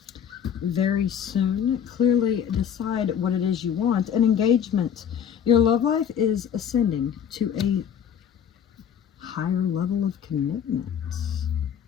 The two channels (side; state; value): right; quieter; 8.5 dB